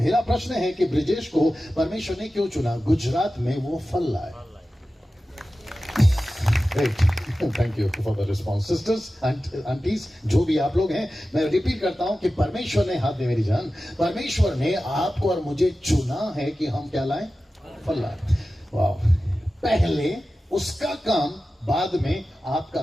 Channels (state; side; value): normal; both; correlation 0.94